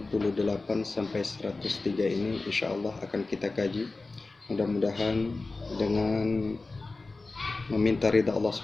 sampai 103 ini insya Allah akan kita kaji. Mudah-mudahan dengan meminta ridha Allah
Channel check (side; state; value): right; quieter; 3.5 dB